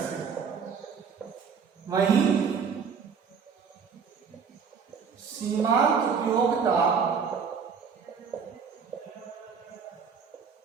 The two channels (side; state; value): left; quieter; 6.2 dB